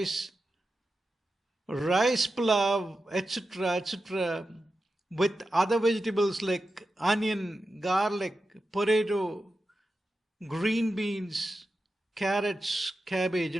pilaf, etc., with other vegetables like onion, garlic, potato, green beans, carrots, cabbage,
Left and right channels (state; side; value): normal; both; correlation 0.91